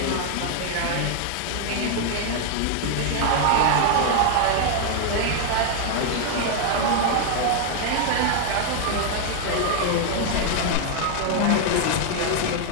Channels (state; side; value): different; both; correlation 0.00